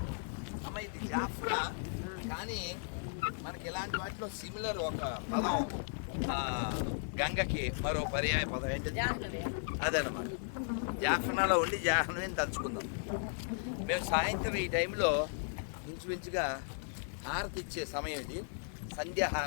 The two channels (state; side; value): silent; right; digital silence